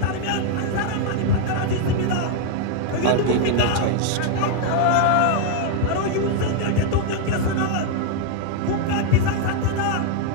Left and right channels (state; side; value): different; both; correlation 0.00